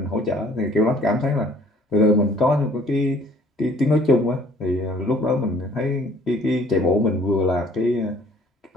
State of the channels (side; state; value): both; normal; correlation 0.56